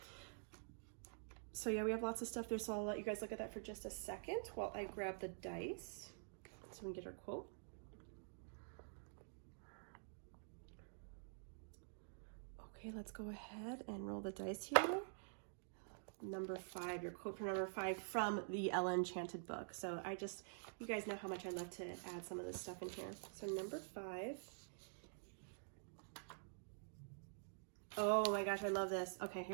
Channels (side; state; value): left; silent; digital silence